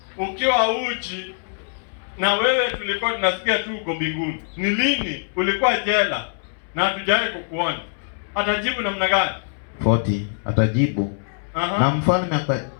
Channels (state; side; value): silent; right; 64 dB below the other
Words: ukiwa uchi, na wewe tulikuwa tunasikia tu uko mbinguni. Ni lini ulikuwa jela na hatujawahi kukuona? Atajibu namna gani? 40 atajibu. Na mfalme